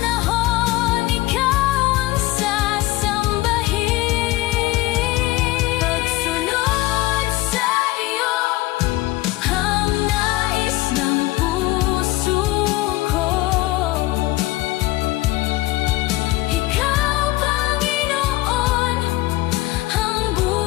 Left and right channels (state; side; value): quieter; right; 18.8 dB